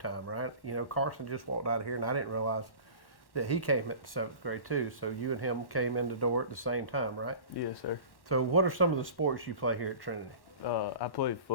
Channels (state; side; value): late; right; 1.1 ms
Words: right? You know, Carson just walked out of here, and I didn't realize that he came at the 7th grade too. So you and him came in the door at the same time, right? Yes, sir. So what are some of the sports you play here at Trinity? I played